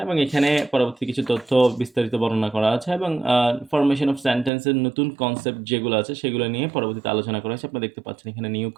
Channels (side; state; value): left; drops out; at 4.5 s